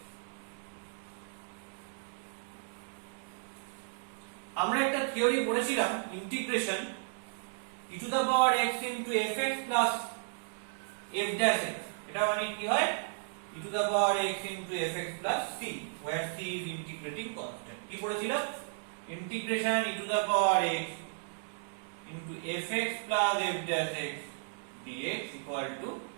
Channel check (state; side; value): silent; left; digital silence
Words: আমরা একটা থিওরি পড়েছিলাম, integration e to the power x into fx plus f dash x, এটা মানে কি হয় e to the power x into fx plus c, where c is integrating constant। কি পড়েছিলাম, integration e to the power x into fx plus f dash x dx equal to